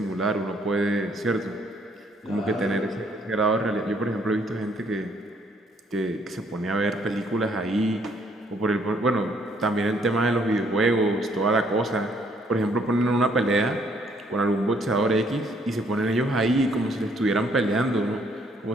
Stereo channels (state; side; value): normal; both; correlation 0.66